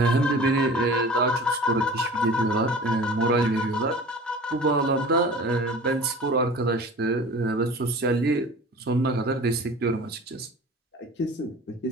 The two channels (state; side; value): normal; both; correlation 0.40